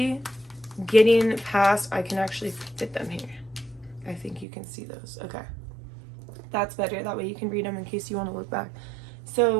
getting past. I can actually fit them here. I think you can see those. Okay. That's better. That way you can read them in case you want to look back.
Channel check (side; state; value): left; drops out; at 4.5 s